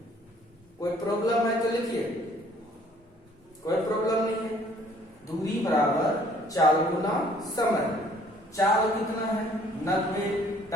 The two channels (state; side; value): normal; both; correlation 0.59